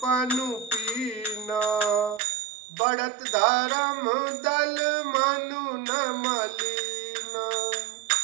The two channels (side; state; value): left; drops out; at 2.2 s